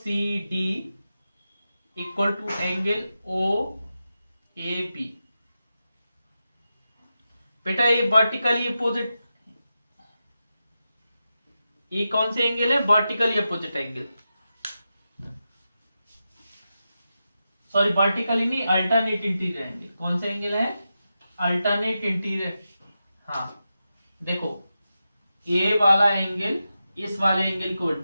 equal to angle OAB। बेटा ये वर्टिकली अपोजिट, ये कौन से एंगल है, vertically opposite angle, sorry vertically नहीं, अल्टरनेट इंटीरियर एंगल। कौन से एंगल है, अल्टरनेट इंटीरियर। हाँ देखो ये वाला एंगल इस वाले एंगल को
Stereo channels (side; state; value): both; inverted; correlation -0.90